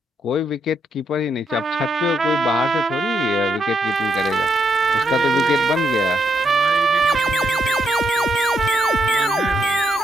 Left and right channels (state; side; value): normal; both; correlation 0.77